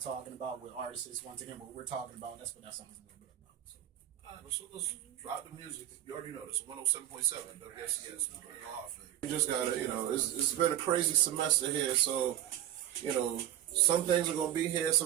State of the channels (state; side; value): quieter; left; 12.1 dB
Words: about with artists. Once again, what we're talking about, that's what that song is a little bit about. So. All right, so let's drop the music. You already know this 107.7 WFCS. We just got to, it's been a crazy semester here, so, some things are going to be here,